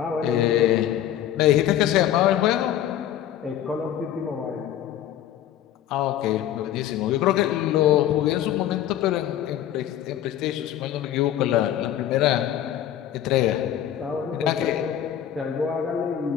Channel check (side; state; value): right; quieter; 11.2 dB